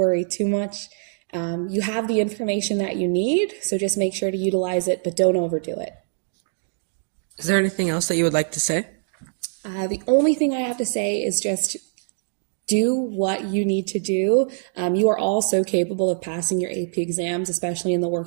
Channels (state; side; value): silent; left; digital silence